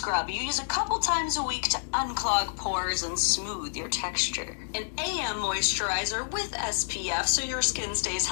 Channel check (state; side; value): silent; right; digital silence